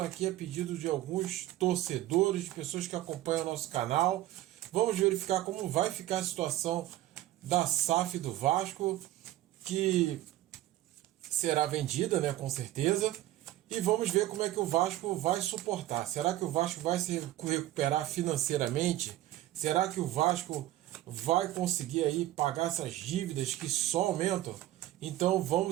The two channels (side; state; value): left; quieter; 14.7 dB